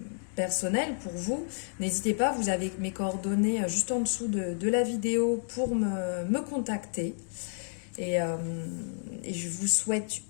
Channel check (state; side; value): silent; right; digital silence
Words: personnel pour vous, n'hésitez pas, vous avez mes coordonnées juste en dessous de la vidéo pour me contacter. Et je vous souhaite